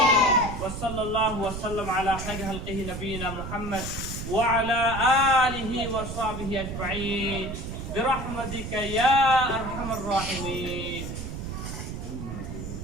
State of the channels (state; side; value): noise; right; rumble, 7 dB below the sound